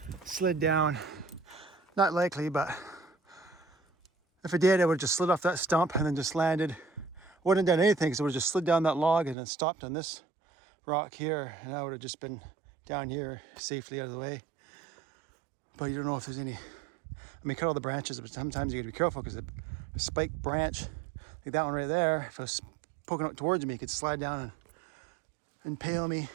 slid down. Not likely, but if it did, it would have just slid off that stump and then just landed. Wouldn't have done anything because it would have just slid down that log and then stopped on this rock here, and I would have just been down here safely out of the way. But you don't know if there's any. I mean, cut all the branches, but sometimes you got to be careful because a spiked branch, like that one right there, if it was poking out towards me, it could slide down and impale me.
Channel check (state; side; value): drops out; left; at 9.3 s